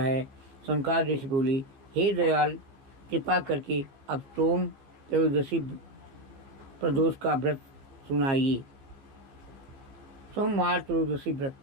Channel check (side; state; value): left; late; 15 ms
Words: शंकर ऋषि बोले, हे दयाल, कृपा करके अब सोम त्रयोदशी प्रदोष का व्रत सुनाइए। सोमवार त्रयोदशी व्रत,